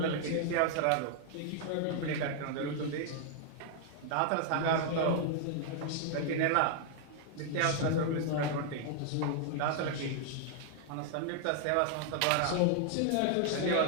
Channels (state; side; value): different; both; correlation 0.00